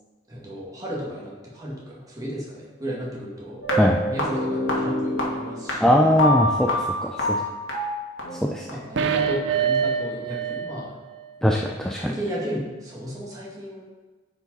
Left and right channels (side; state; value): both; normal; correlation 0.40